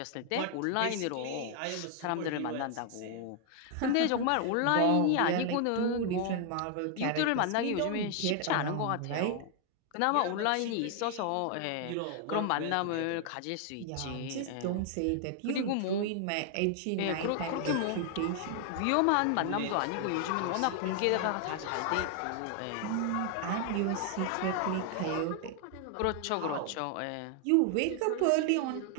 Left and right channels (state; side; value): different; both; correlation 0.00